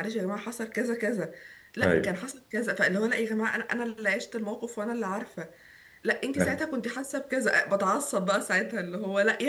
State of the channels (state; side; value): identical; both; correlation 1.00